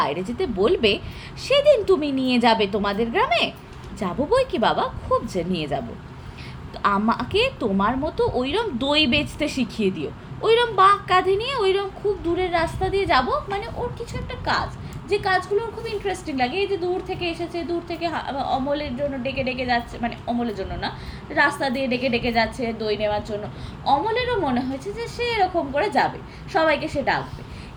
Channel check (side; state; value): both; identical; correlation 1.00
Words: যেতে বলবে সেদিন তুমি নিয়ে যাবে তোমাদের গ্রামে। যাবো বই কি বাবা, খুব যে নিয়ে যাব। আমাকে তোমার মতো ওইরকম দই বেচতে শিখিয়ে দিও, ওইরকম বাঁক কাঁধে নিয়ে ওইরকম খুব দূরের রাস্তা দিয়ে যাব, মানে ওর কিছু একটা কাজ, যে কাজগুলো ওর খুব ইন্টারেস্টিং লাগে। এই যে দূর থেকে এসেছে, দূর থেকে অমলের জন্য ডেকে ডেকে যাচ্ছে, মানে অমলের জন্য না, রাস্তা দিয়ে ডেকে ডেকে যাচ্ছে দই নেওয়ার জন্য। অমলেরও মনে হয়েছে যে সে এরকম করে যাবে, সবাইকে সে ডাকবে।